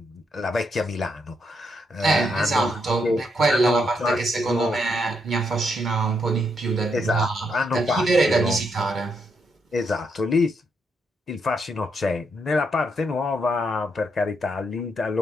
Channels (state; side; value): normal; both; correlation 0.78